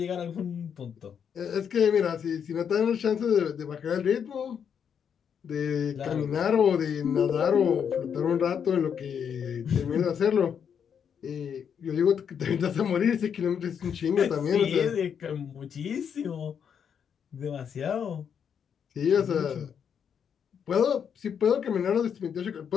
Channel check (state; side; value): quieter; right; 7.6 dB